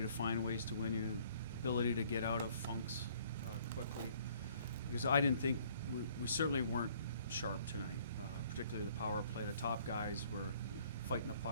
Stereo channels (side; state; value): both; inverted; correlation -0.59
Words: find ways to win, you ability to get out of funks quickly. Because I didn't think, we certainly weren't sharp tonight, particularly the power play. The top guys were fighting the